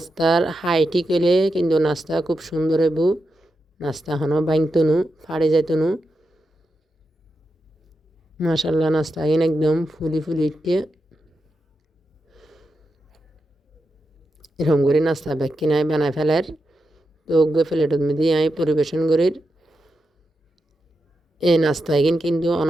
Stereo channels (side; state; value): both; normal; correlation 0.87